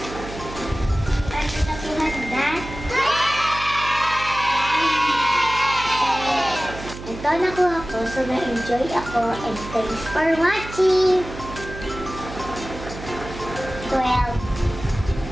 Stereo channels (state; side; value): noise; right; hum, 12 dB below the sound